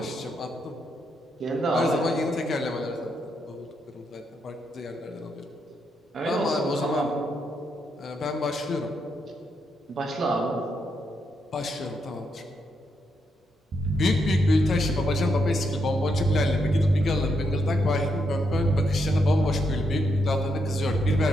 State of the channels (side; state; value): both; normal; correlation 0.79